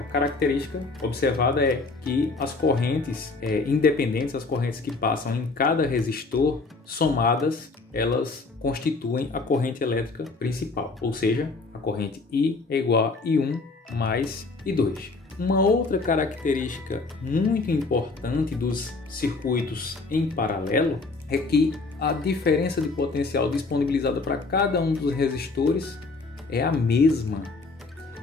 característica observada é que as correntes independentes, as correntes que passam em cada resistor, somadas, elas constituem a corrente elétrica principal. Ou seja, a corrente I é igual a I1 mais I2. Uma outra característica muito importante dos circuitos em paralelo é que a diferença de potencial disponibilizada para cada um dos resistores é a mesma.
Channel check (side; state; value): right; quieter; 3.8 dB